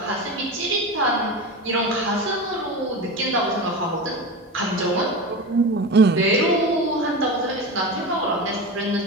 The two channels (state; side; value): normal; both; correlation 0.26